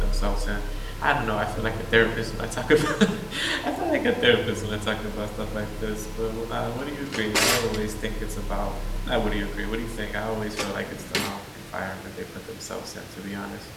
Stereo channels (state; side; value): identical; both; correlation 1.00